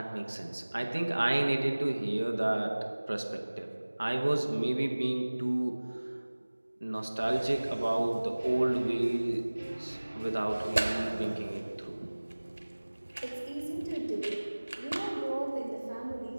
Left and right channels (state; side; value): inverted; both; correlation -1.00